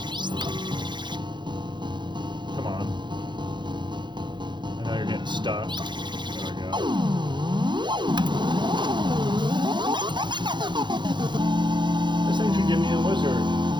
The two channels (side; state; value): left; late; 0.22 ms